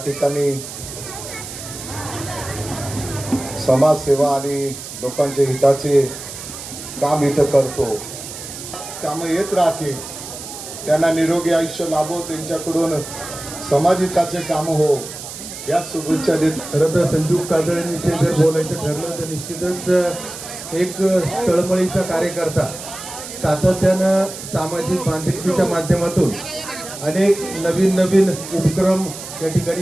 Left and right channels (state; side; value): noise; right; hiss, 11 dB below the sound